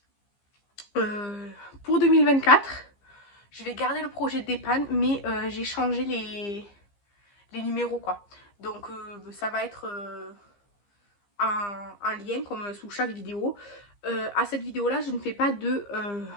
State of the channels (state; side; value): late; right; 15 ms